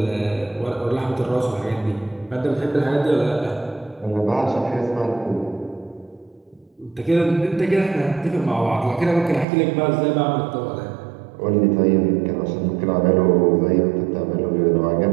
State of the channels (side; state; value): left; drops out; at 9.5 s